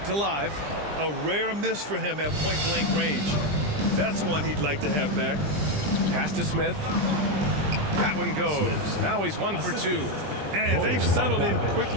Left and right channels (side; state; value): left; late; 20 ms